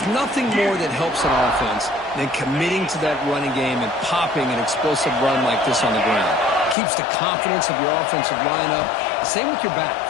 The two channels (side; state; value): right; drops out; at 6.8 s